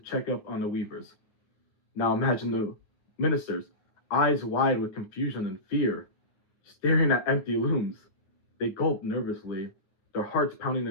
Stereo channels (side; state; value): right; late; 9.9 ms